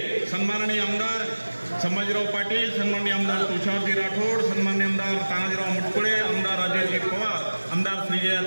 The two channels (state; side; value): inverted; both; correlation -1.00